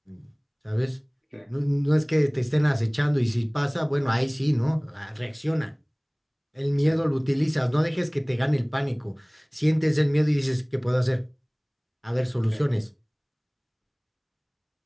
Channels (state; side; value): identical; both; correlation 1.00